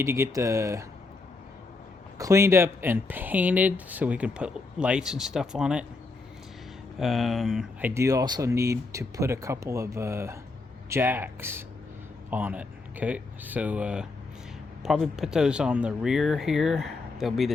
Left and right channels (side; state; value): right; quieter; 3.7 dB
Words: to get the cleaned up and painted so we can put lights and stuff on it. I do also need to put a couple of jacks on it. Okay, so probably put those on the rear here. They'll be